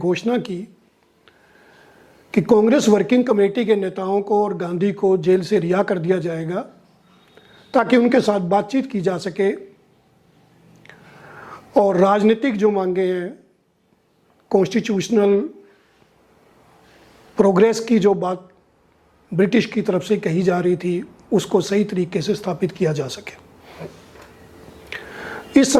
की कि कांग्रेस वर्किंग कमेटी के नेताओं को और गांधी को जेल से रिहा कर दिया जाएगा ताकि उनके साथ बातचीत की जा सके और राजनीतिक जो मांगे हैं, कॉन्स्टिट्यूशनल प्रोग्रेस की जो बात ब्रिटिश की तरफ से कही जा रही थी, उसको सही तरीके से स्थापित किया जा सके। इस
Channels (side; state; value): both; identical; correlation 1.00